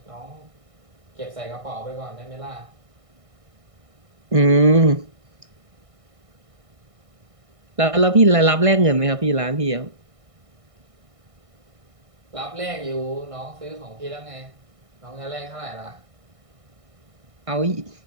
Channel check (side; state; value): left; late; 1.6 ms